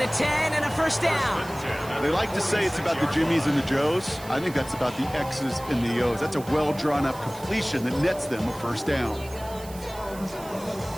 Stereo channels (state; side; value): noise; right; hiss, 18 dB below the sound